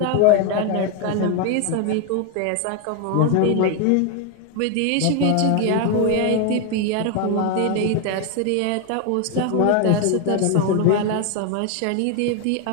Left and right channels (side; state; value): both; different; correlation 0.01